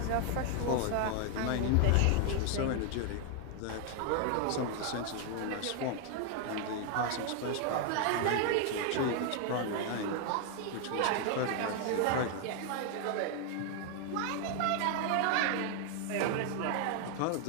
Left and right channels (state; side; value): different; both; correlation 0.00